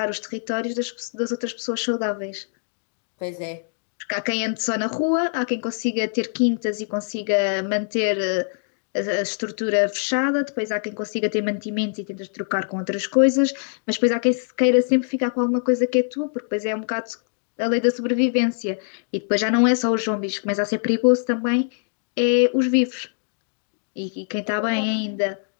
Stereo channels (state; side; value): silent; right; digital silence